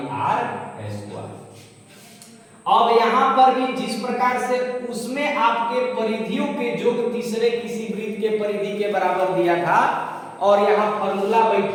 R स्क्वायर। अब यहाँ पर भी जिस प्रकार से उसमें आपके परिधियों के योग तीसरे किसी वृत्त के परिधि के बराबर दिया था, और यहाँ फॉर्मूला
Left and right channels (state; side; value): identical; both; correlation 1.00